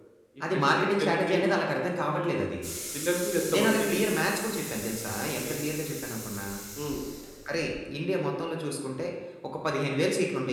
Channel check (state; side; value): identical; both; correlation 1.00